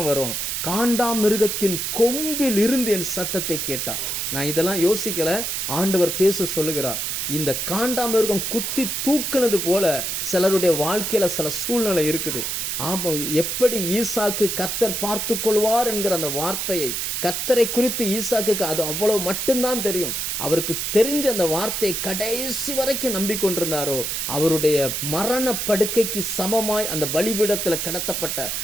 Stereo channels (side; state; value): right; noise; hiss, 2 dB below the sound